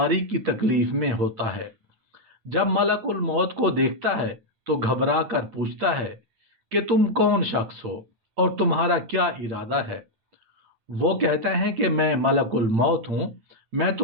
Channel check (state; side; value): late; left; 8.8 ms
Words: की तकलीफ में होता है। जब मलकुल मौत को देखता है तो घबरा कर पूछता है कि तुम कौन शख्स हो और तुम्हारा क्या इरादा है। वो कहता है कि मैं मलकुल मौत हूँ, मैं